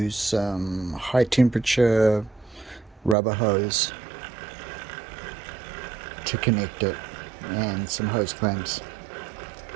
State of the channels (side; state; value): left; drops out; at 3.2 s